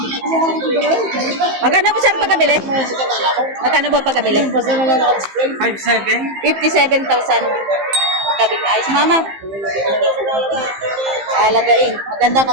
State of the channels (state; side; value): late; left; 15 ms